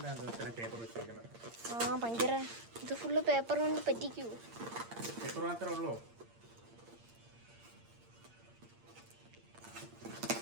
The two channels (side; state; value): left; late; 8.7 ms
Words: പേപ്പർ വെച്ചിരിക്കുന്നത്. ഭയങ്കര ഇത് ഫുള്ള് പേപ്പർ കൊണ്ട് പറ്റിക്കൂ. പേപ്പർ മാത്രമേ ഉള്ളൂ.